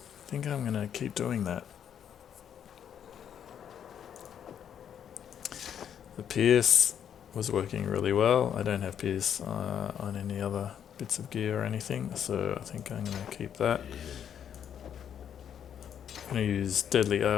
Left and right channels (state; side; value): quieter; right; 8.9 dB